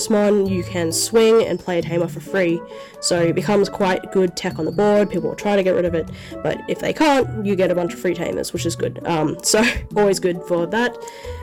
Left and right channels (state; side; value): identical; both; correlation 1.00